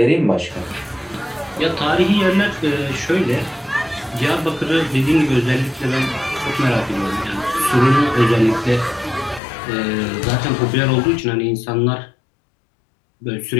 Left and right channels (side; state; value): right; drops out; at 9.4 s